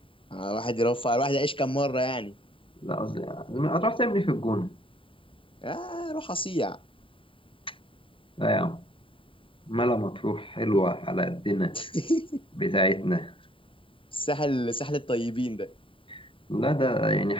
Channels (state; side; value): late; right; 0.25 ms